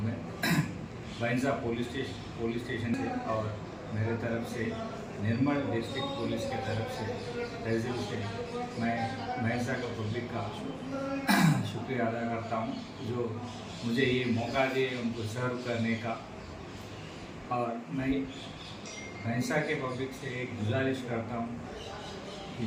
मैं भैंसा पुलिस स्टेशन से और मेरे तरफ से निर्मल डिस्ट्रिक्ट पुलिस के तरफ से तहसील से मैं भैंसा का पब्लिक का शुक्रिया अदा करता हूँ जो मुझे ये मौका दिए उनको सर्व करने का। और मैं भैंसा के पब्लिक से एक गुजारिश करता हूँ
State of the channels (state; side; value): identical; both; correlation 1.00